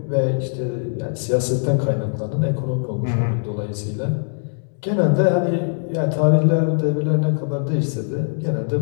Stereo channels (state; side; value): silent; right; digital silence